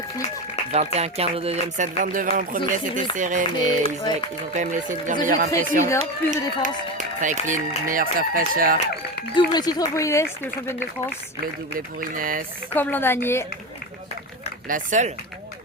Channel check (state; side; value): normal; both; correlation 0.20